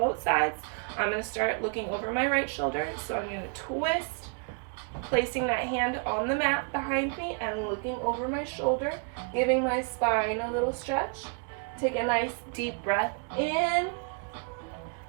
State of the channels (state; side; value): quieter; left; 39.6 dB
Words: sides. I'm gonna start looking over my right shoulder, so I'm gonna twist, placing that hand on the mat behind me and looking over my shoulder, giving my spine a little stretch. Take a nice deep breath in